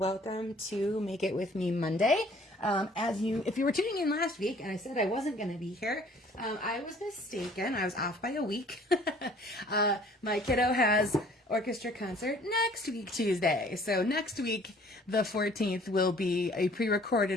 to Make It With Me Monday. If you were tuning in last week and I said I wasn't going to be here, I was mistaken. I was off by a week. My kiddo has orchestra concert next week, Tuesday. So next week, the 14th, will be a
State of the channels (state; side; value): normal; both; correlation 0.55